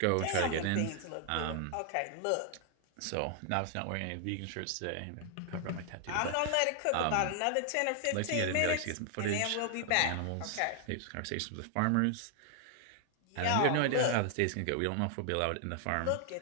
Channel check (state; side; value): different; both; correlation 0.00